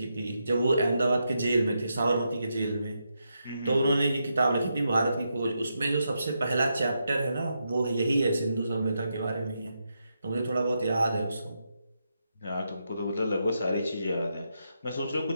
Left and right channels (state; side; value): inverted; both; correlation -0.83